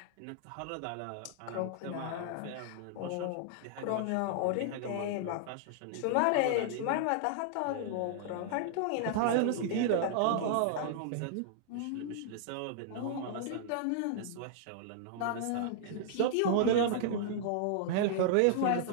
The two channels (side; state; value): both; different; correlation -0.01